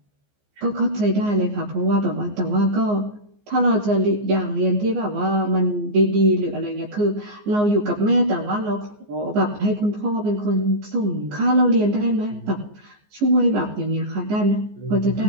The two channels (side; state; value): left; late; 14 ms